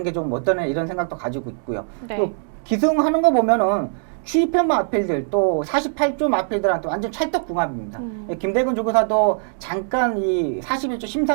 게 좀 어떠냐 이런 생각도 가지고 있고요. 네. 또 기승하는 거 보면은 취입형 마필들 또 48조 마필들한테 완전 찰떡궁합입니다. 김대근 조교사도 잠깐 이 41조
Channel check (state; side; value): silent; left; digital silence